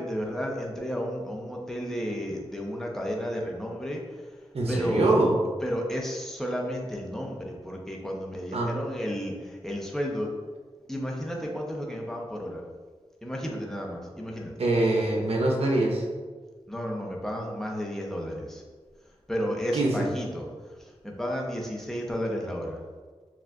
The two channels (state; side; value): normal; both; correlation 0.83